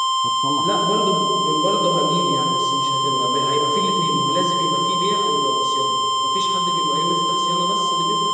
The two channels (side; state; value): both; identical; correlation 1.00